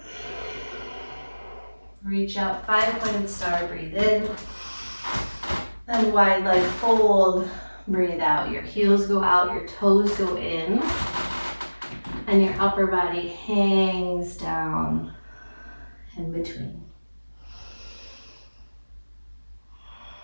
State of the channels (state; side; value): inverted; both; correlation -1.00